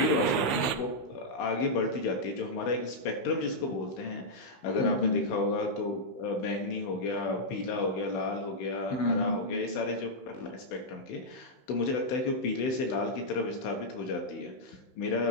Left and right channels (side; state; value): right; late; 16 ms